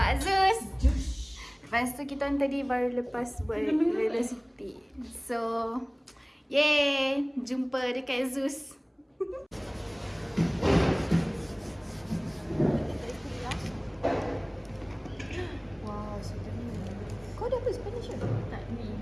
Zeus. Lepas tu kita orang tadi baru lepas buat velocity. So yay, jumpa dekat Zeus. Wow, sedap ni. Kau dah apa Spanish ke? Tak,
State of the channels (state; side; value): identical; both; correlation 1.00